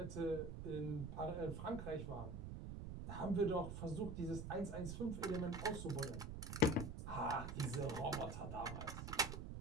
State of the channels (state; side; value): noise; right; rumble, 6 dB below the sound